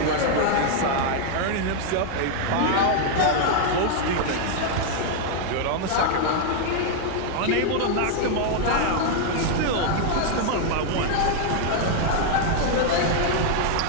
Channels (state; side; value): different; both; correlation 0.00